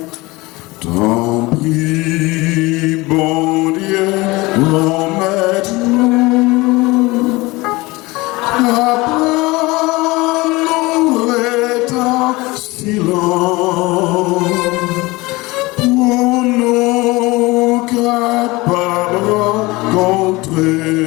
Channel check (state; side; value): quieter; right; 22.2 dB